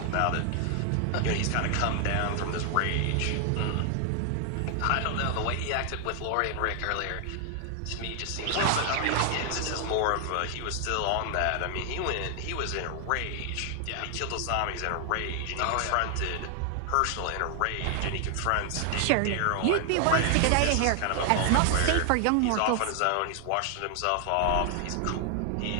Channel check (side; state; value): both; different; correlation 0.00